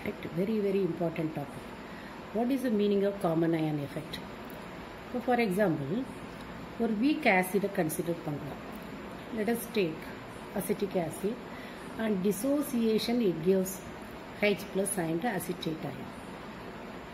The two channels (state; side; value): identical; both; correlation 1.00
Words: very important topic. What is the meaning of common ion effect? So for example, ஒரு weak acid consider பண்ணலாம். Let us take acetic acid and dissociation it gives H plus and acetate ion.